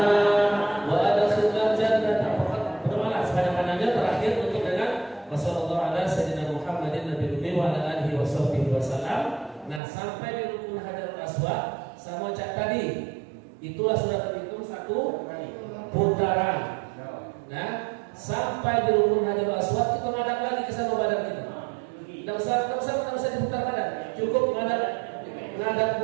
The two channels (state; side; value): drops out; left; at 9.8 s